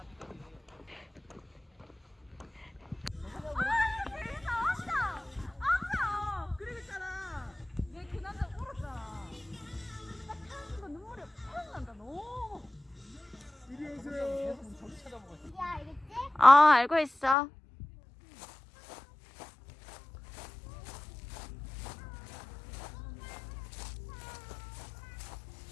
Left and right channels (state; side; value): drops out; right; at 17.4 s